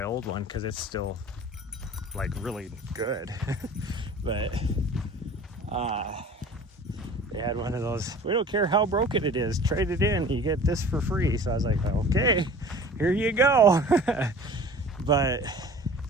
old one because it's still like really good. But they had one of those, we don't care how broken it is, trade it in, you get this for free. So I was like, okay, here you go. But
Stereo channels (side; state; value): both; normal; correlation 0.44